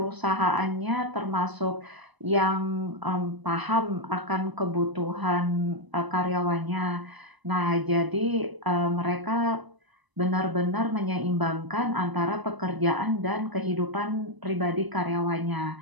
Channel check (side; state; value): left; late; 1.0 ms